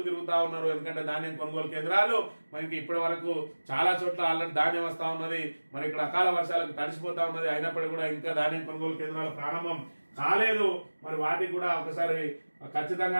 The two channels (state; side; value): inverted; both; correlation -1.00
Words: తిరుగుతా ఉన్నారు. ఎందుకంటే ధాన్యం కొనుగోలు కేంద్రాలు మనకి ఇప్పటి వరకు చాలా చోట్ల ఆల్రెడీ ధాన్యం వస్తా ఉన్నది. మరి ఇక్కడ అకాల వర్షాలకు తడిసిపోతా ఉన్నది. అయినప్పటికీ కూడా ఇంకా ధాన్యం కొనుగోలు కేంద్రాలు ప్రారంభం కాలేదు. మరి వాటికి కూడా ఒకసారి